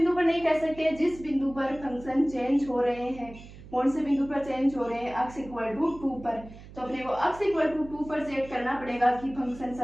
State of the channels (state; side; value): noise; right; hum, 17 dB below the sound